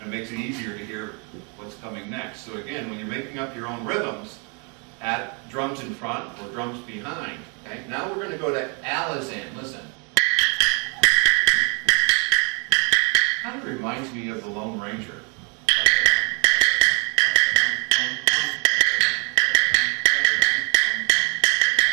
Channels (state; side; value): quieter; left; 35.1 dB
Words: and makes it easier to hear what's coming next. So again, when you're making up your own rhythms, add drums in front or drums behind. Okay? Now we're going to go to Alizan. Listen. Kind of reminds me of the Lone Ranger.